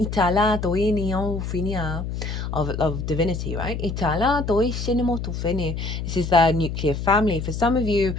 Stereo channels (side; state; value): left; noise; hum, 5 dB below the sound